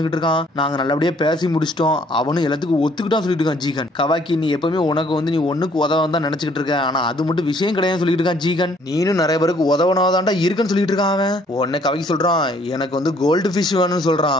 இருக்கான். நாங்க நல்லபடியா பேசி முடிச்சிட்டோம், அவனும் எல்லாத்துக்கும் ஒத்துக்கிட்டான் சொல்லிட்டு இருக்கான். ஜீகன் கவாக்கி நீ எப்பவுமே உனக்கு வந்து நீ ஒண்ணுக்கு உதவ தான் நினைச்சுக்கிட்டு இருக்க, ஆனா அது மட்டும் விஷயம் கிடையாது சொல்லிட்டு இருக்கான். ஜீகன் நீனும் நிறைய பேருக்கு உதவனாதான்டா இருக்குன்னு சொல்லிட்டு இருக்கான். அவன் உடனே கவாக்கி சொல்றான், எனக்கு வந்து கோல்டு ஃபிஷ் வேணும்னு சொல்றான்.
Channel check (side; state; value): both; normal; correlation 0.62